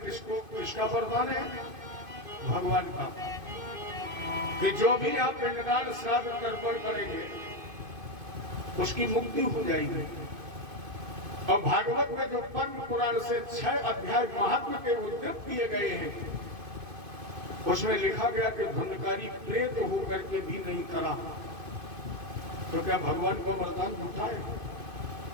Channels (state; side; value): late; left; 2.5 ms